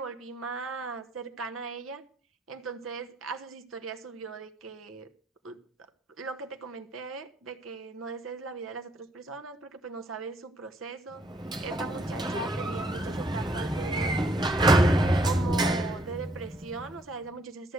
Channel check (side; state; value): both; normal; correlation 0.68